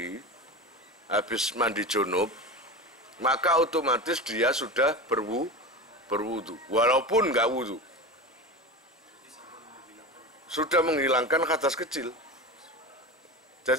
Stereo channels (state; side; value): normal; both; correlation 0.27